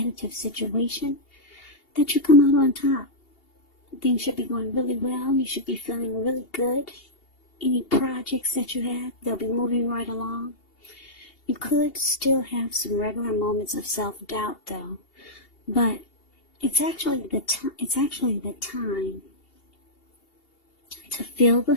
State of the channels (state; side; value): late; right; 2.8 ms